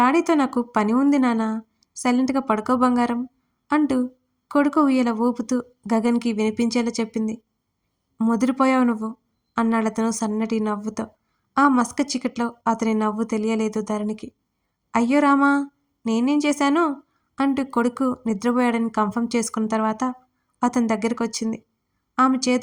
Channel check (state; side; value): identical; both; correlation 1.00